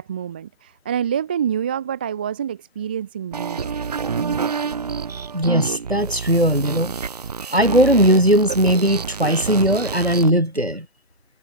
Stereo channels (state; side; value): normal; both; correlation -0.13